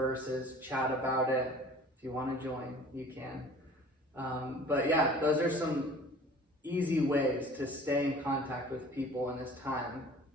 chat about it. If you want to join, you can. But yeah, those are some easy ways to stay in contact with people in this time.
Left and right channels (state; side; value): normal; both; correlation 0.46